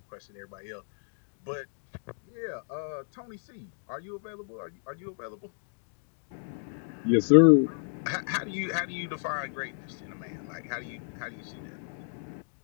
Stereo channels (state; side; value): silent; right; digital silence